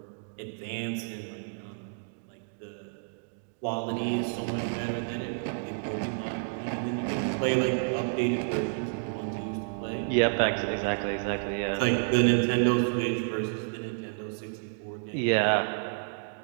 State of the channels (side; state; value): left; silent; digital silence